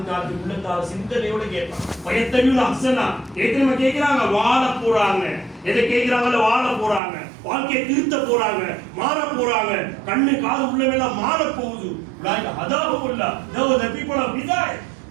உள்ளத்தால் சிந்தனையோட கேட்பான். பயத்தையும் அசனா ஏற்கனவே கேட்கிறாங்க வாழ போறாங்க, எதை கேட்கிறாங்கல்ல வாழ போறாங்க, வாழ்க்கையை திருத்த போறாங்க, மாற போறாங்க, கண்ணு காது உள்ளவெல்லாம் மாற போகுது. Athaullah the people of hidayat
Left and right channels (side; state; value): left; drops out; at 7.0 s